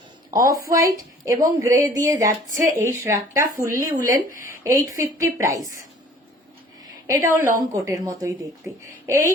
অফ হোয়াইট এবং গ্রে দিয়ে যাচ্ছে এই শ্রাগটা, ফুললি উলেন, 850 প্রাইস। এটাও লং কোটের মতোই দেখতে।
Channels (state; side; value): normal; both; correlation 0.51